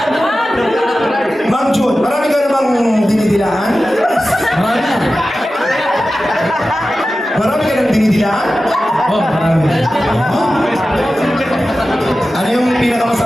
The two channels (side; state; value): both; normal; correlation 0.94